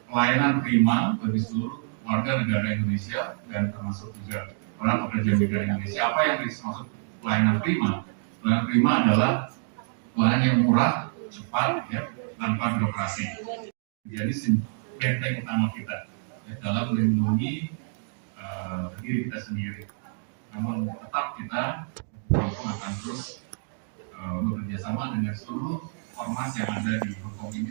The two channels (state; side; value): silent; left; 57 dB below the other